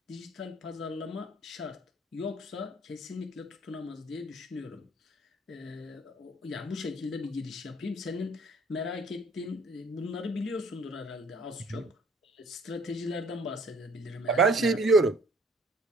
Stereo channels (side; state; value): both; normal; correlation 0.57